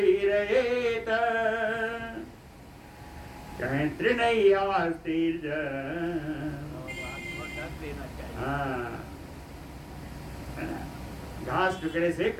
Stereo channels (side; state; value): both; identical; correlation 1.00